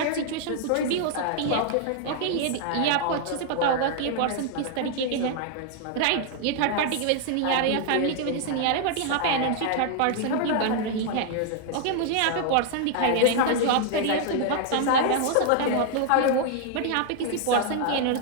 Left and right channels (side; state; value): both; different; correlation 0.00